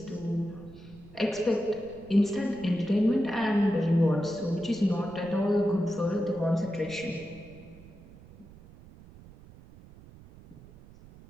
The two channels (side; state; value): right; noise; rumble, 21 dB below the sound